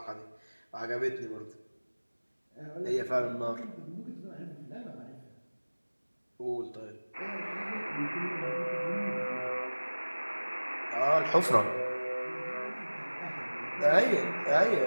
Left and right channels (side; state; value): both; inverted; correlation -1.00